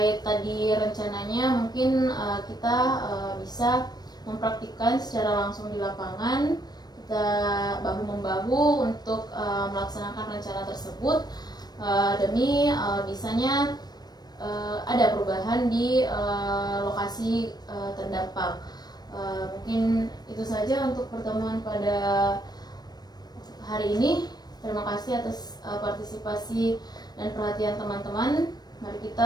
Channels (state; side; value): late; right; 0.19 ms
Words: tadi rencananya mungkin kita bisa mempraktikkan secara langsung di lapangan. kita bahu-membahu untuk melaksanakan rencana tersebut demi bisanya ada perubahan di lokasi terdampak. Mungkin itu saja untuk pertemuan pada hari ini. Terima kasih atas partisipasi dan perhatian teman-teman. Mari